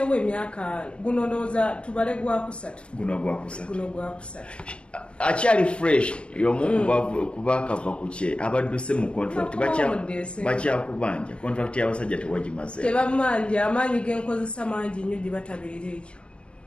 emyaka guno ndowooza tubale gwakusatu. Guno gwakusatu. Akyali fresh y'omu kubakava ku kye abadduse mu contract bakyakubanja contract y'abasajja tewagimaze. Tebamanja amaanyi genkozesa mangi nnyo gye batabeera ekyo.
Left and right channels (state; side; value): late; right; 0.058 ms